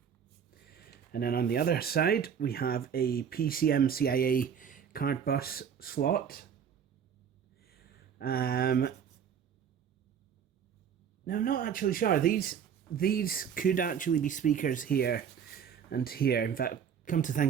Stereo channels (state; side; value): quieter; left; 7.9 dB